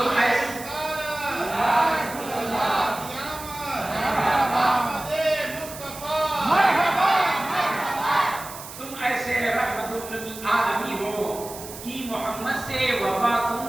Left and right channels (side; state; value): right; noise; hiss, 13 dB below the sound